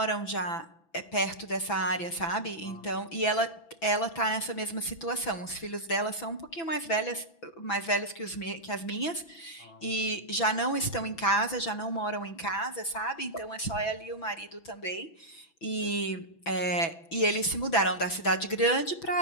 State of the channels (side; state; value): right; late; 6.0 ms